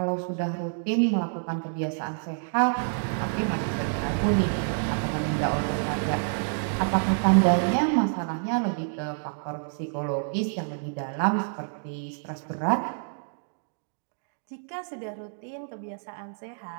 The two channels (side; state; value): left; silent; digital silence